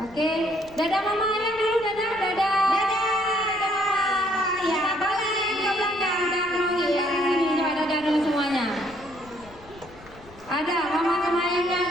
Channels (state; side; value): noise; left; rumble, 22 dB below the sound